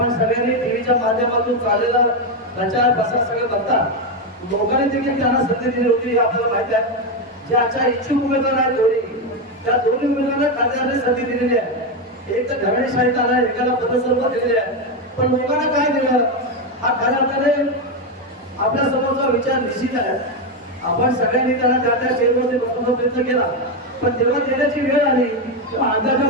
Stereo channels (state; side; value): normal; both; correlation 0.08